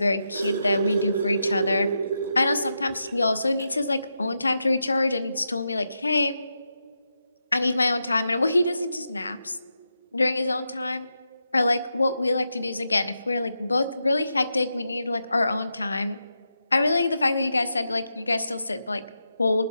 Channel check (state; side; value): inverted; both; correlation -0.86